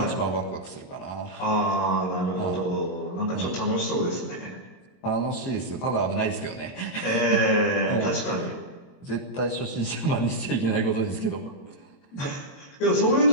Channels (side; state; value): right; late; 22 ms